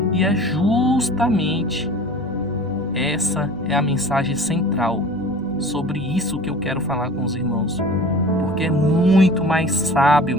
E é justamente essa é a mensagem central. Sobre isso que eu quero falar com os irmãos. Porque é muito mais sábio,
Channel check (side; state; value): both; normal; correlation 0.42